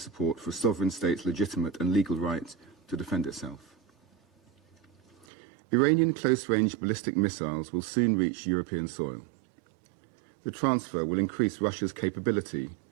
for a sovereign state's legitimate and legal right to defend itself. Iranian close-range ballistic missiles will soon reach European soil. The transfer will increase Russia's capability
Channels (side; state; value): left; drops out; at 5.2 s